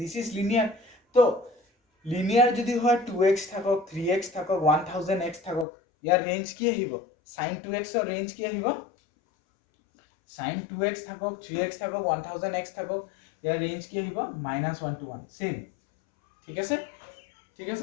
this is linear. তো লিনিয়াৰ যদি হয় 2x থাকক, 3x থাকক, 1000x থাকক, ইয়াৰ ৰেঞ্জ কি আহিব, sin 2x ৰ ৰেঞ্জ কি আহিব, sin 2x থাকক, 3x থাকক, 1000x থাকক, ইয়াৰ ৰেঞ্জ কি আহিব -1 to 1, সেম, ঠিক আছে? ঠিক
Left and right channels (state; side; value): drops out; right; at 5.7 s